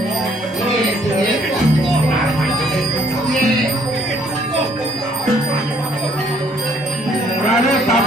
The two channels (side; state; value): both; normal; correlation 0.64